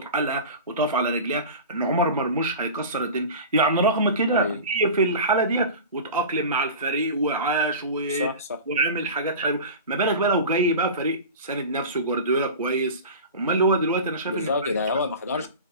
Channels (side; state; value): both; inverted; correlation -0.33